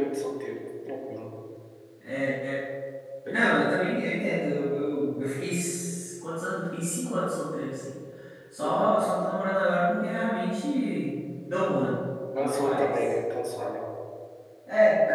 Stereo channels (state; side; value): identical; both; correlation 1.00